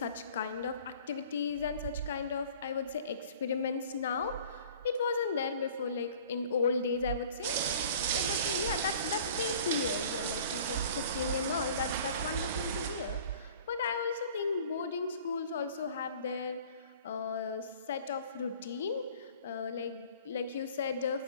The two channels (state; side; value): inverted; both; correlation -0.48